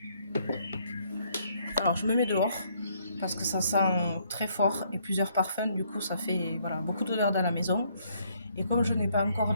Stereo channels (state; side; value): inverted; both; correlation -0.68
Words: Alors je me mets dehors parce que ça sent très fort et plusieurs parfums, du coup ça fait voilà, beaucoup d'odeur dans la maison. Et comme je n'ai pas encore